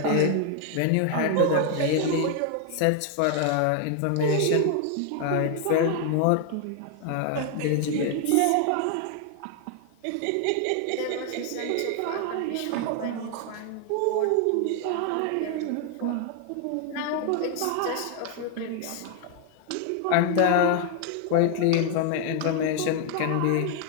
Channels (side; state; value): both; different; correlation 0.00